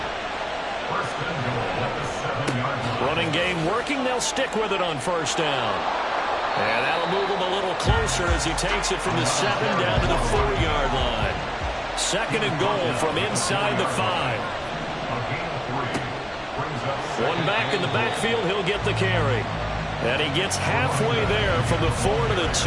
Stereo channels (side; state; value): both; identical; correlation 1.00